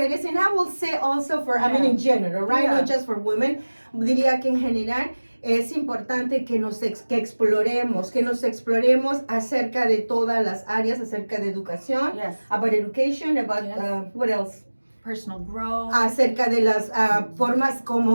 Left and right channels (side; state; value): both; inverted; correlation -1.00